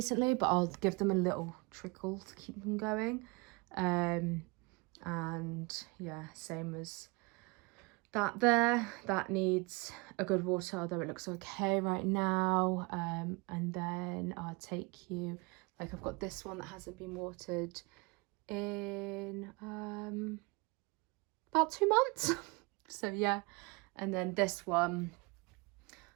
but I'll give them a little trickle to keep them going. And yeah, same as that there. That needs a good water, although it looks okay right now. And then I'll take you, like I've got this one that hasn't been watered in about 2 months. So yeah, and then this one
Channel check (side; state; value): left; quieter; 27.8 dB